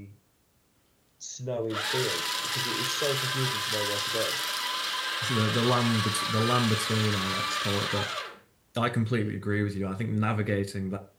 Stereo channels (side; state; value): both; identical; correlation 1.00